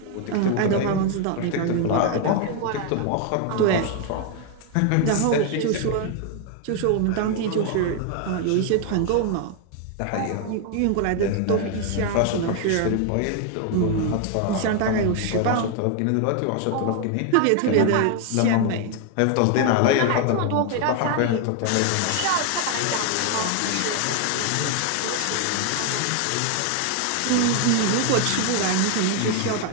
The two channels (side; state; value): both; different; correlation 0.00